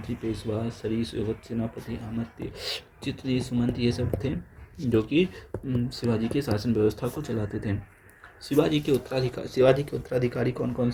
पेशवा, सरीस, सेनापति, अमात्य, चित्री, सुमंत ये सब थे जो कि शिवाजी के शासन व्यवस्था को चलाते थे। शिवाजी के उत्तराधिकारी कौन कौन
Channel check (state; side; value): identical; both; correlation 1.00